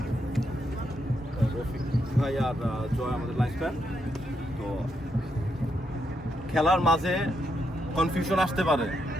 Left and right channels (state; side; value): normal; both; correlation 0.80